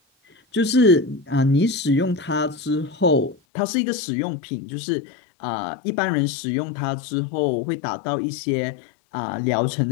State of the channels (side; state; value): right; drops out; at 3.4 s